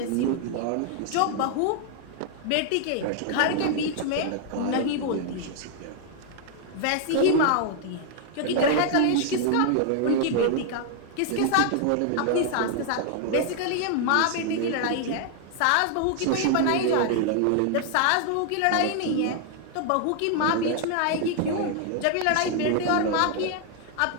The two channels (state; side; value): different; both; correlation 0.00